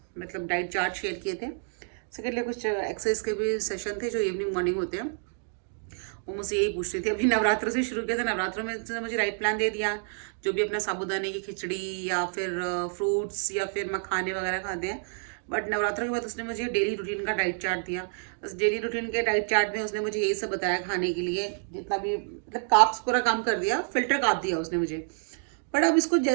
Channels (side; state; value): left; silent; 59 dB below the other